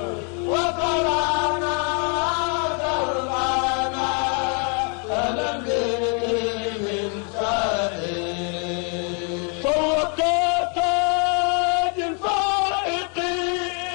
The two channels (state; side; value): quieter; right; 38.1 dB